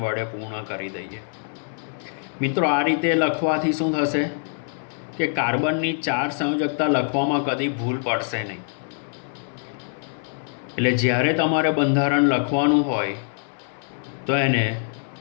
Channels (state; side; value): silent; right; digital silence